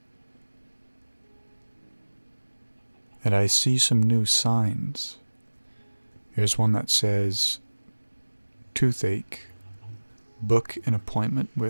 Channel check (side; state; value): both; inverted; correlation -1.00